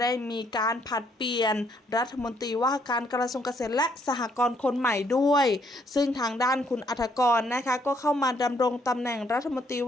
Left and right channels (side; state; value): both; normal; correlation 0.69